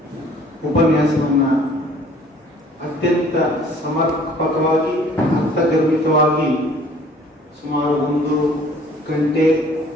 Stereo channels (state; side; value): normal; both; correlation 0.54